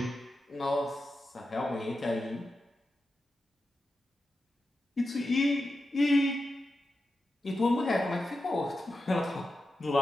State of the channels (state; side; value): normal; both; correlation 0.90